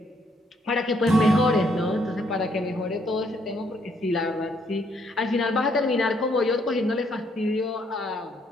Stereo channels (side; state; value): both; normal; correlation 0.70